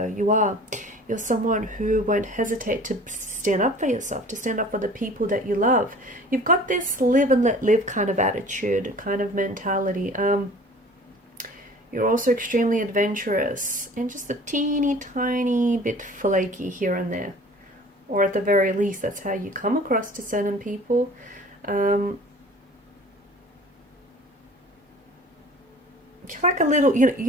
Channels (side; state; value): both; normal; correlation 0.46